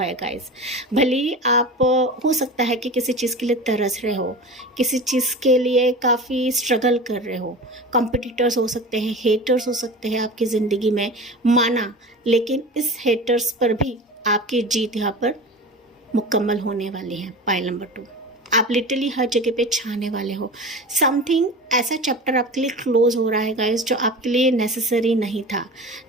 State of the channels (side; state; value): both; normal; correlation 0.33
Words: है गाइस। भले ही आप हो सकता है कि किसी चीज़ के लिए तरस रहे हो, किसी चीज़ के लिए काफ़ी स्ट्रगल कर रहे हो, कॉम्पिटिटर्स हो सकते हैं, हेटर्स हो सकते हैं आपकी ज़िंदगी में, माना, लेकिन इस हेटर्स पर भी आपकी जीत यहाँ पर मुकम्मल होने वाली है पाइल नंबर 2। आप लिटरली हर जगह पे छाने वाले हो। समथिंग ऐसा चैप्टर आपके लिए क्लोज हो रहा है गाइस, जो आपके लिए नेसेसरी नहीं था,